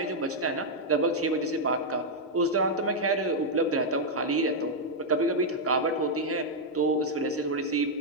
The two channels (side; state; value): both; normal; correlation -0.03